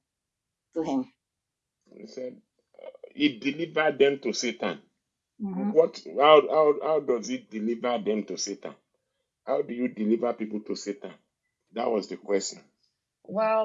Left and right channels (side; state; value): both; identical; correlation 1.00